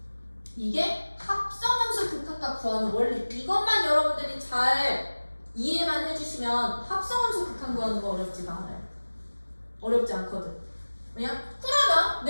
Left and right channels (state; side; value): inverted; both; correlation -1.00